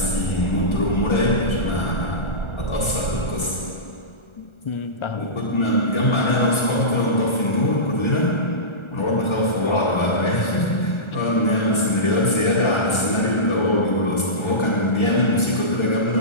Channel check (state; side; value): late; right; 1.4 ms